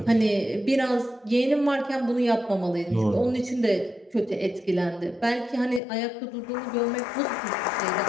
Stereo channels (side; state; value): right; drops out; at 5.8 s